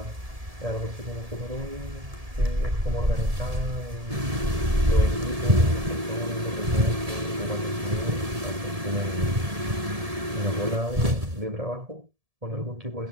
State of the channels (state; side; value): late; left; 1.7 ms